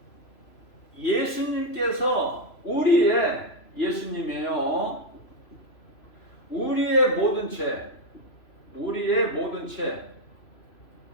예수님께서 예수님이에요. 우리의 모든 죄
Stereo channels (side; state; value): right; late; 3.0 ms